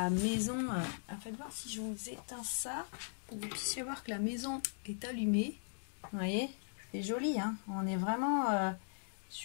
maison. Faites voir si je vous éteins ça, pour que vous puissiez voir que la maison est allumée. Vous voyez, c'est joli, hein. On est vraiment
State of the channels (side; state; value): right; silent; digital silence